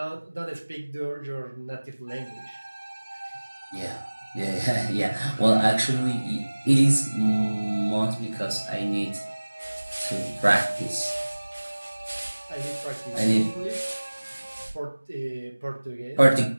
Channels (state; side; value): inverted; both; correlation -1.00